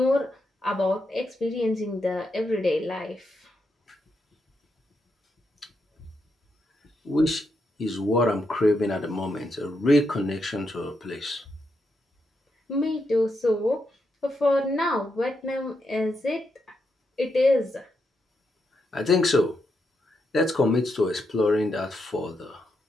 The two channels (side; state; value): both; normal; correlation 0.83